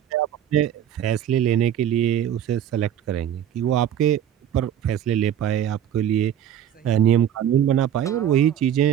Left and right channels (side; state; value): left; quieter; 10.2 dB